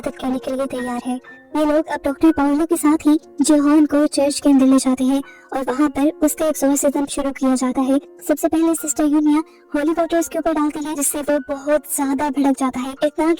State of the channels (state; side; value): identical; both; correlation 1.00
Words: करने के लिए तैयार है। ये लोग अब डॉक्टर पावलो के साथ ही जिहोन को चर्च के अंदर ले जाते हैं और वहाँ पर उसका एक्सोर्सिज्म शुरू किया जाता है। सबसे पहले सिस्टर यूनिया होली वाटर उसके ऊपर डालती है, जिससे वो बहुत ज्यादा भड़क जाता है। इतना